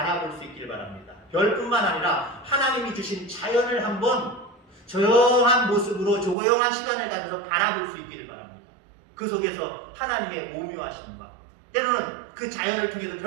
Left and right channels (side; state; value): left; drops out; at 6.4 s